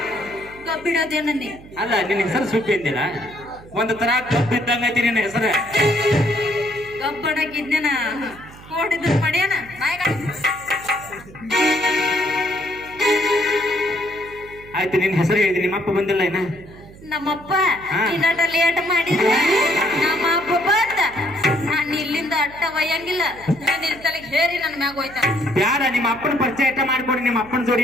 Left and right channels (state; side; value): noise; right; hum, 20 dB below the sound